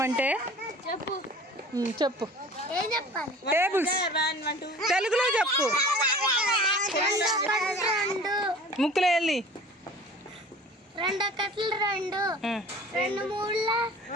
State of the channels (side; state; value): both; normal; correlation 0.44